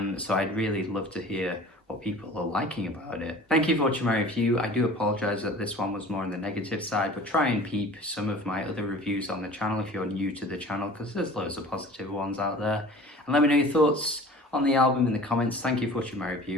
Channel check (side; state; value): both; normal; correlation 0.43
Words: So I'd really love to hear what people are liking about it. Thank you for watching my review. I do apologize that this one was more on the negative side, but try and peep some of my other reviews on the channel if you're new to the channel, because there's loads of positive ones out there. And let me know your thoughts on the album in the comments. Thank you for watching my